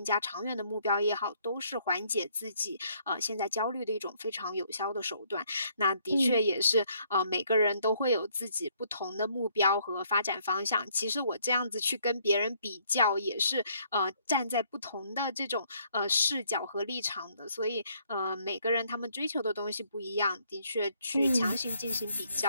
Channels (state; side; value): inverted; both; correlation -0.67